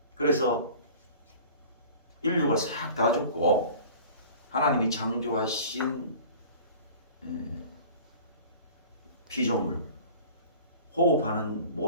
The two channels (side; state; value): both; inverted; correlation -0.43